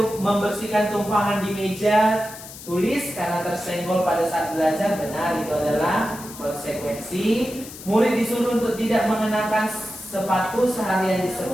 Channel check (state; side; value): noise; left; hiss, 14 dB below the sound